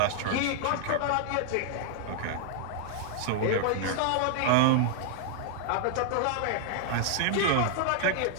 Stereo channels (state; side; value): different; both; correlation -0.01